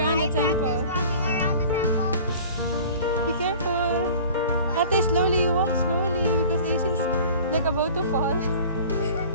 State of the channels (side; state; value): both; inverted; correlation -0.43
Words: the temple. Walking around the temple. Be careful. Ate, slowly. You walk slowly because Ace's like about to fall.